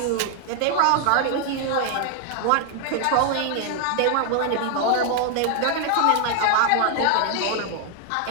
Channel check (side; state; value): both; different; correlation 0.00